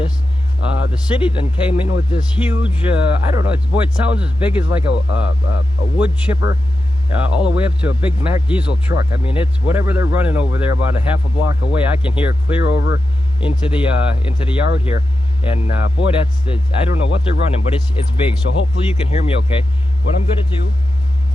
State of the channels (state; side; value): normal; both; correlation 0.90